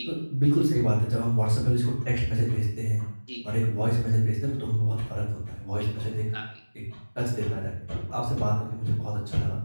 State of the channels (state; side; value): inverted; both; correlation -1.00